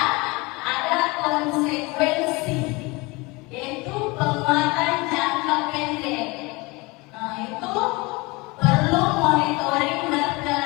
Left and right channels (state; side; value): quieter; right; 25.0 dB